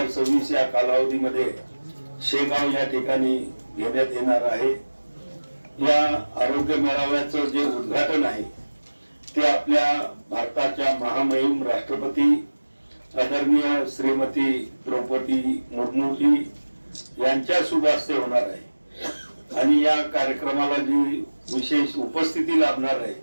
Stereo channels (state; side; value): inverted; both; correlation -1.00